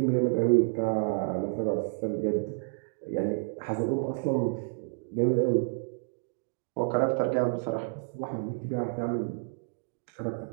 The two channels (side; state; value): left; silent; digital silence